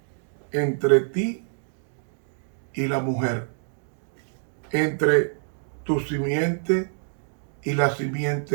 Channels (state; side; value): silent; left; digital silence